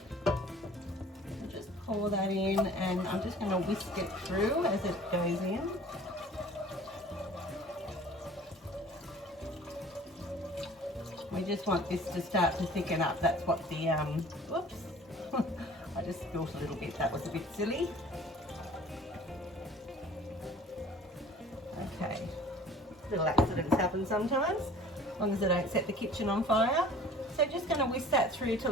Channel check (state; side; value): normal; both; correlation 0.47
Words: Just pour that in, and I'm just going to whisk it through as it goes in. We just want this to start to thicken up. That's what the, whoops, I just spilled a little bit, that was a bit silly. Okay, little accidents happen sometimes, as long as I don't set the kitchen on fire. So just going to whisk that through